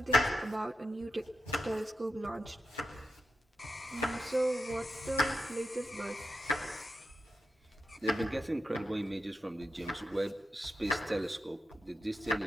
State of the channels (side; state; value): both; normal; correlation 0.90